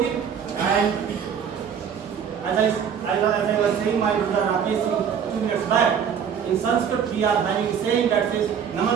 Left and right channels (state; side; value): quieter; left; 7.6 dB